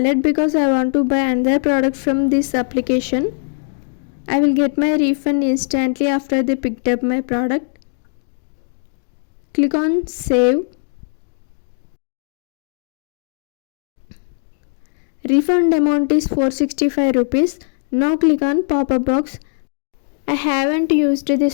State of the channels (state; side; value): silent; right; digital silence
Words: because I want to buy another product from this application. I will get my refund instantly after they picked up my product. Click on save. Refund amount is 465 rupees. Now click on pop-up box. I haven't used